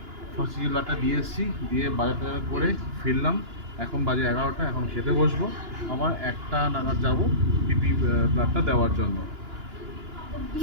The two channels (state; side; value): late; left; 2.9 ms